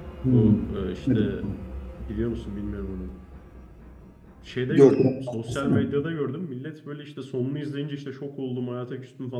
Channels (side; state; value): both; identical; correlation 1.00